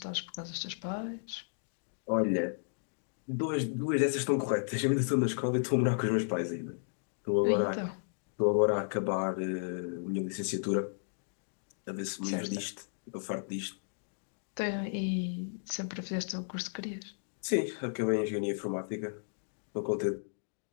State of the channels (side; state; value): right; silent; digital silence